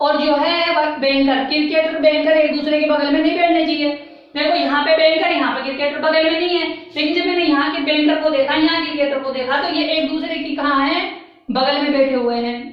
जो है वह बैंकर, क्रिकेटर बैंकर एक दूसरे के बगल में नहीं बैठने चाहिए। देखो यहाँ पे बैंकर, यहाँ पे क्रिकेटर बगल में नहीं है, लेकिन जब मैंने यहाँ के बैंकर को देखा, यहाँ क्रिकेटर को देखा, तो ये एक दूसरे की कहाँ है, बगल में बैठे हुए हैं।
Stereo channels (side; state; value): both; identical; correlation 1.00